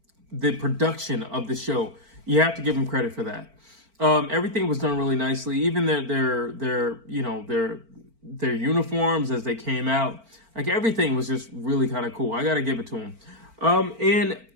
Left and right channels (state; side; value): late; left; 4.4 ms